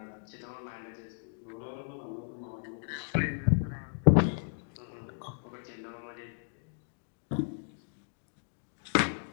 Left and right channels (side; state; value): right; silent; digital silence